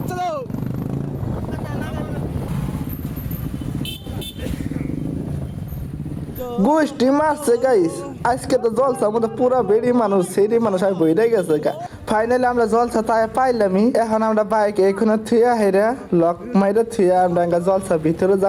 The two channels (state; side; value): identical; both; correlation 1.00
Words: चलो গোষ্ঠী মারছে গাইস। আজকে তো জলসা মধ্যে পুরো বেড়ি মানুষ সেরি মানুষ আমি বইরে গেছে গা। ফাইনালি আমরা জলসা তাই পাইলামই। এখন আমরা বাইক এখানে থুয়া হেরা লক মাইরে থুয়া আমরা জলসা ভিতরে